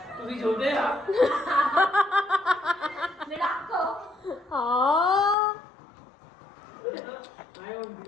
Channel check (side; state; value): right; drops out; at 5.4 s